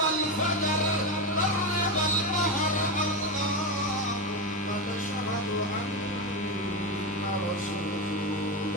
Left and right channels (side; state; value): both; normal; correlation 0.15